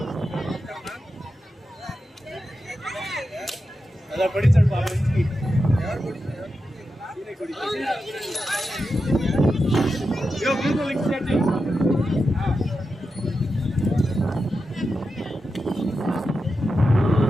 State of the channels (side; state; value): both; normal; correlation 0.89